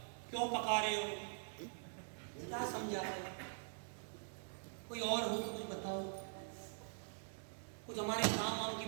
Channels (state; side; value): silent; left; digital silence